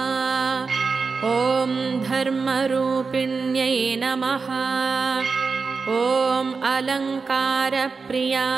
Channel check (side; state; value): left; quieter; 4.7 dB